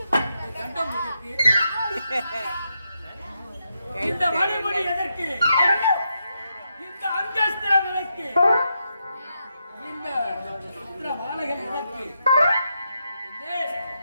கண்டம் எதற்கு? இந்த வழிமுறை எதற்கு? இந்த அங்கஸ்திரம் எதற்கு? இந்த மாலைகள் எதற்கு?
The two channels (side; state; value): both; inverted; correlation -0.84